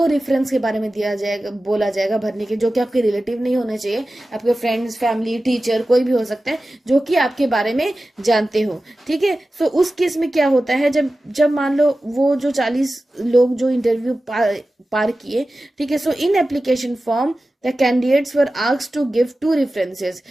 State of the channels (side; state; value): both; normal; correlation 0.95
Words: रेफरेंस के बारे में दिया जाएगा, बोला जाएगा भरने के, जो कि आपके रिलेटिव नहीं होने चाहिए, आपके फ्रेंड्स, फैमिली, टीचर, कोई भी हो सकता है जो कि आपके बारे में जानते हो, ठीक है। सो उस केस में क्या होता है, जब मान लो वो जो 40 लोग जो इंटरव्यू पार किए, ठीक है, so in application form the candidates were asked to give 2 references.